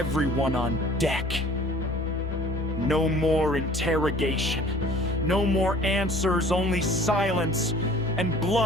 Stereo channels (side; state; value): both; normal; correlation 0.50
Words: on deck. No more interrogation, no more answers, only silence and